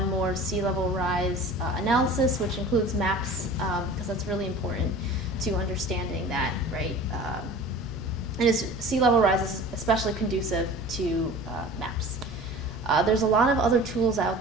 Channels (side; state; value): both; normal; correlation 0.40